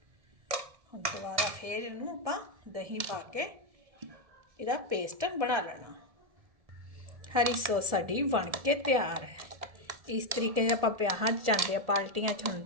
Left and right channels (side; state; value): left; late; 1.7 ms